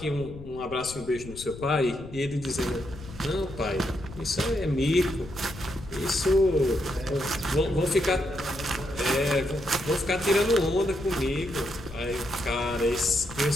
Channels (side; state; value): left; noise; rumble, 14 dB below the sound